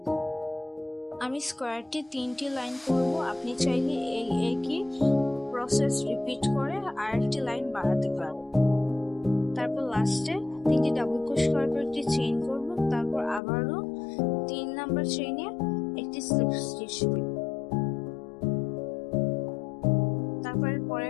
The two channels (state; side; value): drops out; right; at 13.4 s